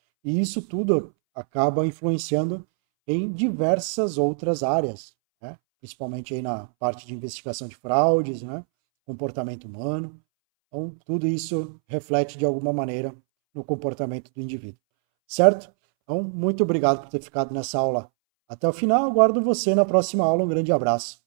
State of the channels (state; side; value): silent; left; 63 dB below the other